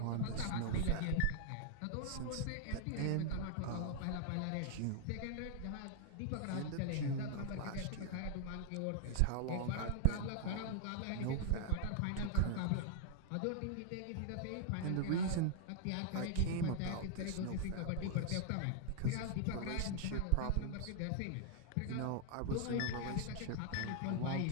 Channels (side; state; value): both; different; correlation 0.00